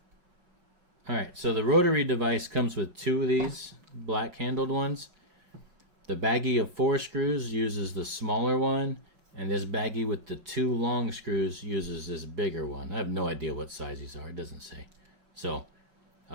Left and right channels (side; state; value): left; late; 5.4 ms